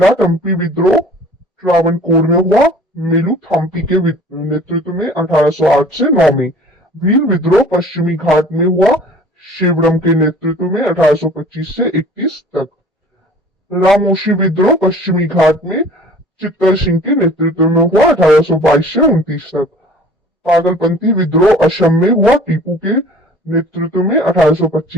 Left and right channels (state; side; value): normal; both; correlation 0.48